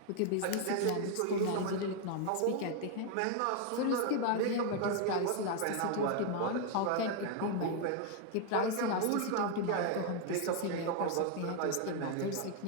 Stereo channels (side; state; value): both; different; correlation 0.00